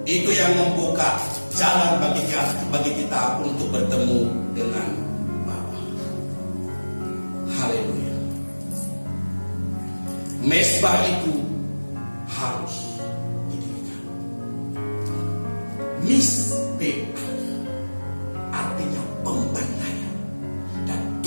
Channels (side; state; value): both; inverted; correlation -1.00